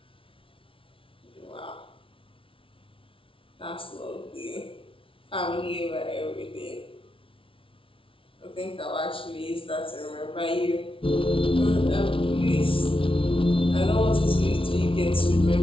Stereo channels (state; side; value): late; right; 0.25 ms